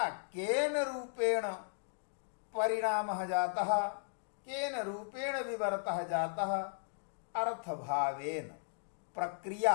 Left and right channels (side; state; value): right; silent; digital silence